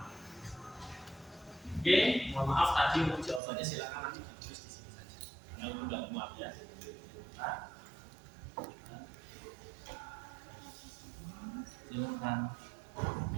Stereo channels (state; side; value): drops out; left; at 3.4 s